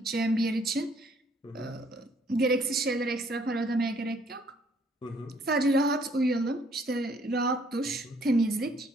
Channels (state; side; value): normal; both; correlation 0.64